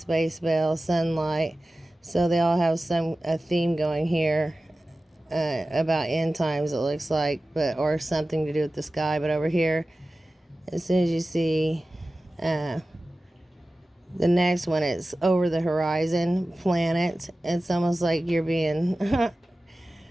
bell, sunlight. So they all have a theme going here. About end times, it looks like, or something to do with the sky. But over here, as soon as you see the next one, it's over the horizon, planet. It's almost like you're being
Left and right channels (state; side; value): normal; both; correlation 0.96